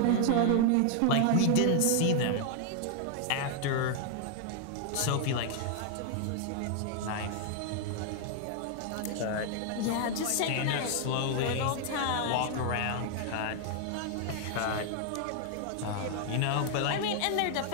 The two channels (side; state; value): both; different; correlation 0.00